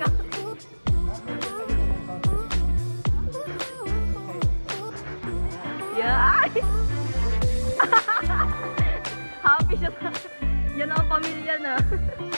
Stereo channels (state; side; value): inverted; both; correlation -1.00